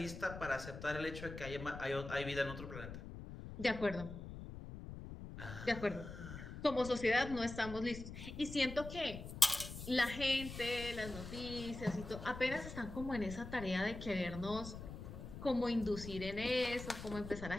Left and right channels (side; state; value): left; noise; rumble, 10 dB below the sound